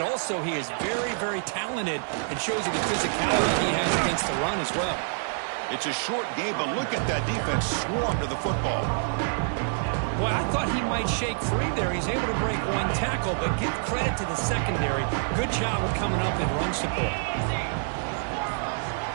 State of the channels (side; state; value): left; silent; 60 dB below the other